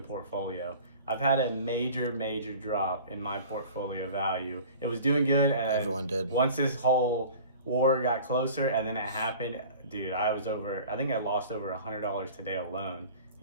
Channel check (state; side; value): inverted; both; correlation -0.43